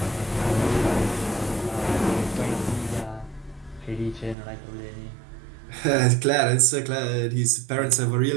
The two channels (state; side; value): drops out; left; at 4.4 s